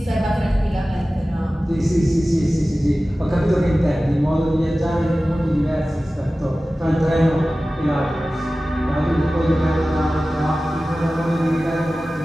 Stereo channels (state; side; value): normal; both; correlation 0.96